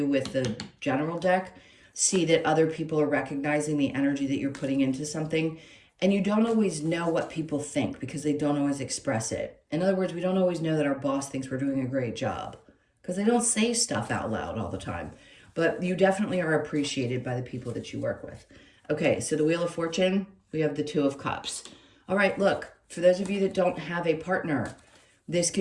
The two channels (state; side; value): identical; both; correlation 1.00